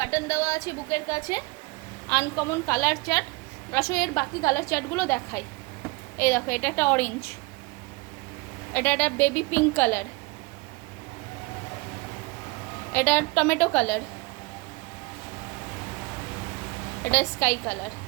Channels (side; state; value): left; quieter; 25.2 dB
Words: বাটন দেওয়া আছে বুকের কাছে। Uncommon colour chart. আসলে এর বাকি কালার চার্টগুলো দেখাই। এই দেখো, এটা একটা অরেঞ্জ, এটা একটা বেবি পিঙ্ক কালার, এটা টমেটো কালার, এটা স্কাই কালার।